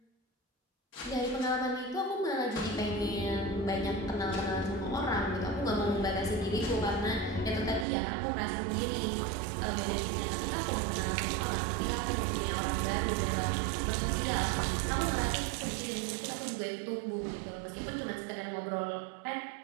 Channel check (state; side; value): drops out; left; at 7.9 s